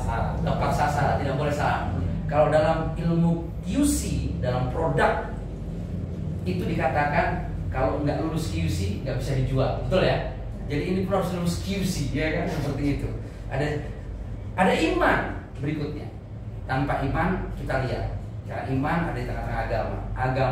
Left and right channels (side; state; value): both; identical; correlation 1.00